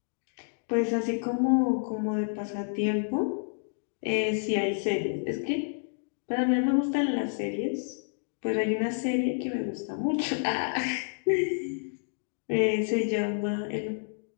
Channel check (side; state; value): right; silent; digital silence